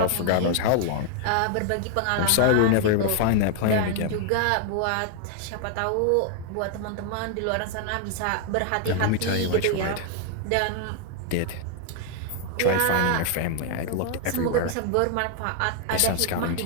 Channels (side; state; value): both; different; correlation 0.00